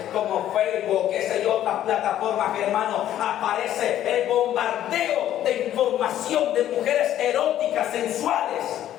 como Facebook, qué sé yo, otras plataformas, hermano, aparece el bombardeo de información de mujeres eróticas, sensuales.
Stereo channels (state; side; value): quieter; right; 11.9 dB